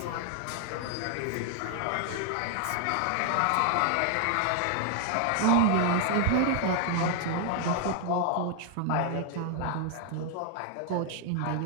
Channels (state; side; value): different; both; correlation 0.00